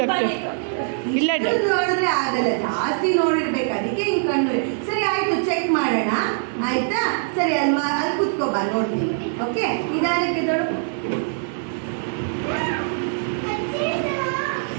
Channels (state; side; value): silent; left; 63 dB below the other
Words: ಇಲ್ಲ ಇಷ್ಟು ನೋಡಿದ್ರೆ ಆಗಲ್ಲ ಜಾಸ್ತಿ ನೋಡಿರ್ಬೇಕು ಅದಕ್ಕೆ ಹಿಂಗ್ ಕಣ್ಣು ಸರಿ ಆಯ್ತು ಚೆಕ್ ಮಾಡೋಣ ಆಯ್ತಾ ಸರಿ ಅಲ್ಲಿ ಕೂತ್ಕೋಬಾ ನೋಡ್ತೀನಿ ಓಕೆ ನಿಧಾನಕ್ಕೆ ದೊಡ್ಡ